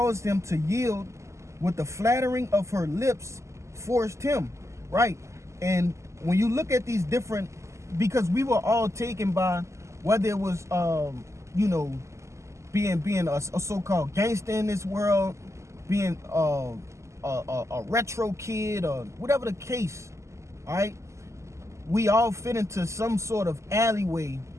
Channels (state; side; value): late; left; 0.14 ms